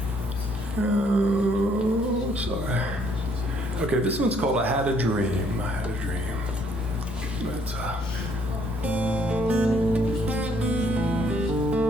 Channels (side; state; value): both; normal; correlation 0.66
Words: Oh, sorry. Okay, this one's called I Had a Dream. I Had a Dream. It's,